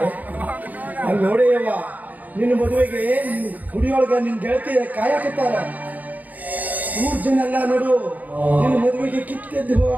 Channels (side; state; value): left; late; 0.080 ms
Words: ಅಲ್ಲಿ ನೋಡೇಯವ್ವ, ನಿನ್ನ ಮದುವೆಗೆ ಗುಡಿಯೊಳಗ ನಿನ್ ಗೆಳತಿ ಕಾಯಕತ್ತಾರ. 3 ಜನ ಎಲ್ಲ ನೋಡು ನಿನ್ನ ಮದುವೆಗೆ ಕಿತ್ತೆದ್ದು